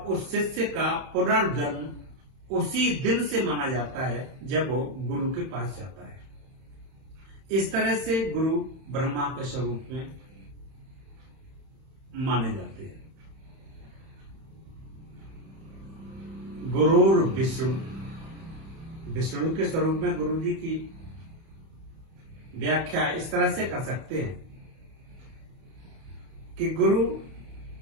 शिष्य का पुनर्जन्म उसी दिन से माना जाता है जब वो गुरु के पास जाता है। इस तरह से गुरु ब्रह्मा के स्वरूप में माने जाते हैं। गुरुर विष्णु, विष्णु के स्वरूप में गुरु जी की व्याख्या इस तरह से कर सकते हैं कि गुरु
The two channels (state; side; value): late; left; 31 ms